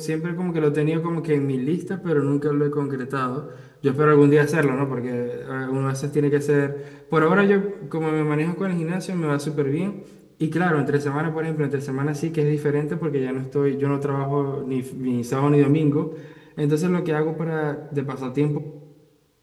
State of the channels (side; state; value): both; identical; correlation 1.00